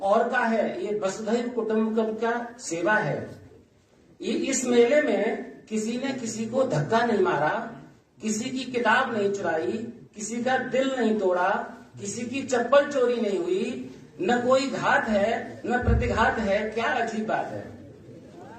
और का है, ये वसुधैव कुटुंबकम का सेवा है। ये इस मेले में किसी ने किसी को धक्का नहीं मारा, किसी की किताब नहीं चुराई, किसी का दिल नहीं तोड़ा, किसी की चप्पल चोरी नहीं हुई, न कोई घात है न प्रतिघात है। क्या अजीब बात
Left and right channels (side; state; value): both; identical; correlation 1.00